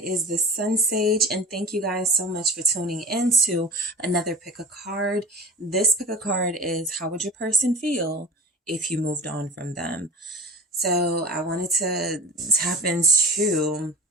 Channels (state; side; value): normal; both; correlation 0.35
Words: is the SunSage, and thank you guys so much for tuning into another pick a card. This pick a card is how would your person feel if you moved on from them? So I wanted to tap into